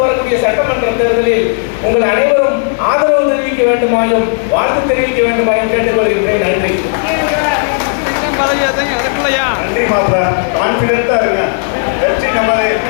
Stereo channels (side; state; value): right; silent; digital silence